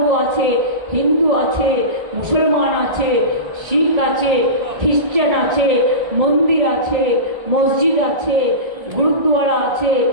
আছে, হিন্দু আছে, মুসলমান আছে, শিখ আছে, খ্রিস্টান আছে, মন্দির আছে, মসজিদ আছে, গুরুদ্বারা আছে,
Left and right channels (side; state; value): left; late; 2.0 ms